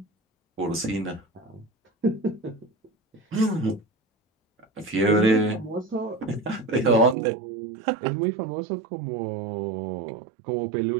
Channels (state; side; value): drops out; left; at 7.2 s